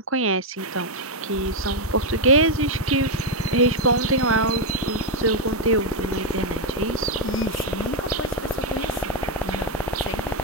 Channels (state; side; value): normal; both; correlation 0.00